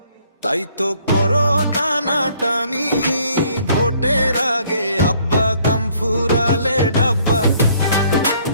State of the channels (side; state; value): both; inverted; correlation -0.63